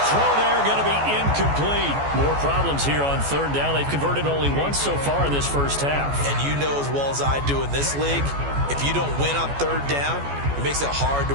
throw there going to be incomplete. More problems here on third down. They've converted only once so far in this first half. And you know as well as I do in this league, if you don't win on third down, it makes it hard to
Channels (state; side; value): late; left; 14 ms